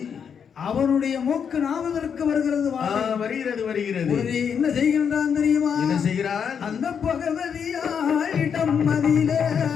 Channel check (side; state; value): right; quieter; 7.2 dB